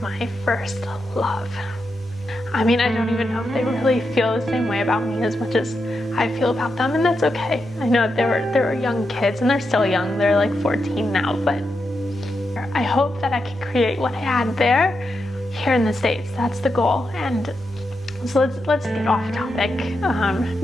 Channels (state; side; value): normal; both; correlation 0.85